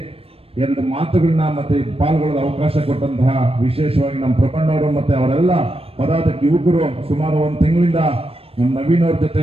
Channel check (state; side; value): late; left; 0.28 ms